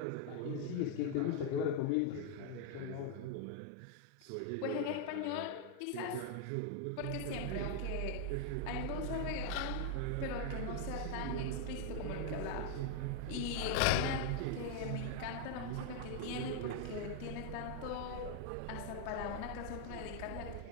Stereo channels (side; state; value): both; different; correlation 0.00